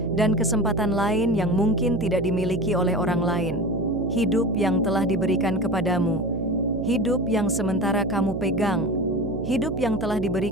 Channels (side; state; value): right; noise; hum, 6 dB below the sound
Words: dan kesempatan lain yang mungkin tidak dimiliki oleh orang lain. Hidup yang telah diberikan kepadamu, hidup yang sementara kamu pegang, hidup yang telah